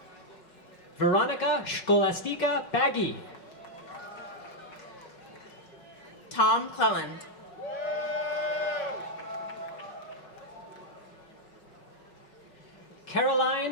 Veronica Scholastica Baggy. Tom Cleland.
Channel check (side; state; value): right; late; 5.4 ms